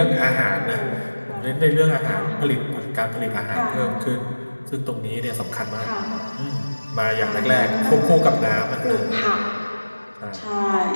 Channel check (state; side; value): inverted; both; correlation -1.00